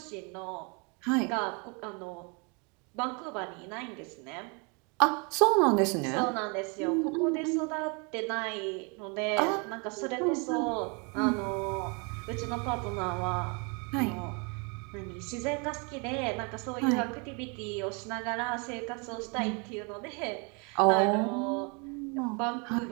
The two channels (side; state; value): left; quieter; 33.1 dB